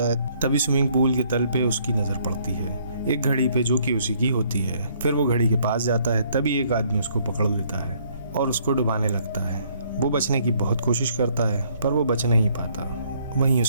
है तभी स्विमिंग पूल के तल पे उसकी नज़र पड़ती है एक घड़ी पे जो कि उसी की होती है। फिर वो घड़ी के पास जाता है तभी एक आदमी उसको पकड़ लेता है और उसको डुबाने लगता है। वो बचने की बहुत कोशिश करता है पर वो बच नहीं पाता, वहीं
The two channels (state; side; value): inverted; both; correlation -0.65